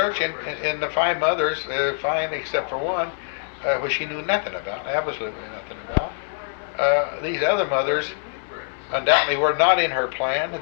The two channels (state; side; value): silent; right; 63 dB below the other